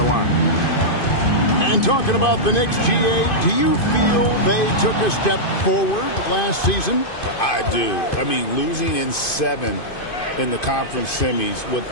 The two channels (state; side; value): late; right; 2.5 ms